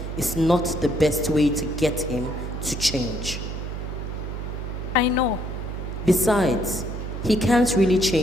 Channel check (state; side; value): noise; right; hum, 6 dB below the sound